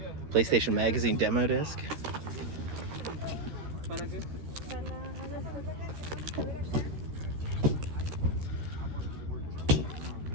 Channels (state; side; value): late; left; 13 ms